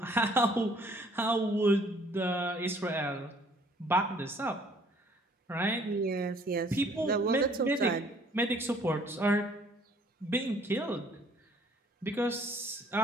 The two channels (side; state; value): both; normal; correlation 0.59